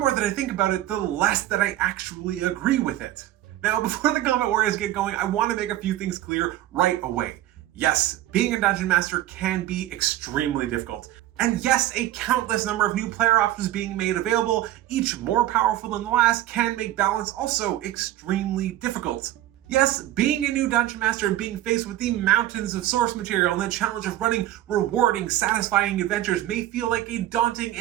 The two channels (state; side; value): quieter; left; 14.1 dB